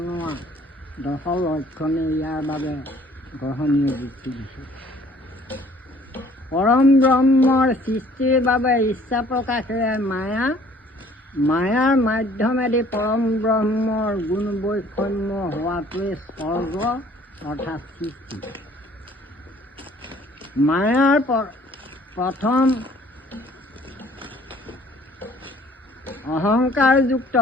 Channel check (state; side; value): normal; both; correlation 0.56